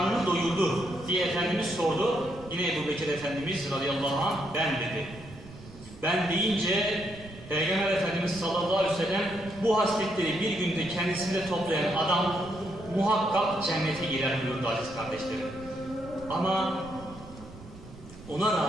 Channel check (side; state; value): right; noise; rumble, 17 dB below the sound